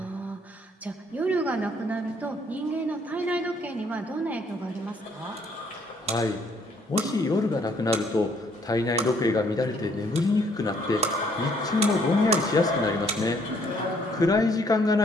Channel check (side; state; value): both; normal; correlation 0.65